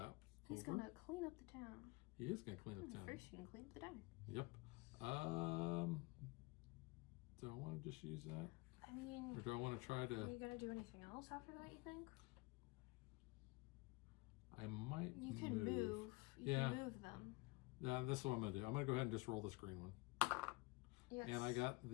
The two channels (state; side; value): quieter; right; 24.9 dB